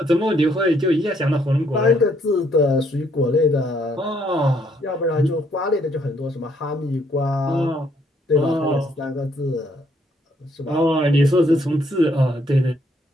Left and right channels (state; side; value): normal; both; correlation 0.69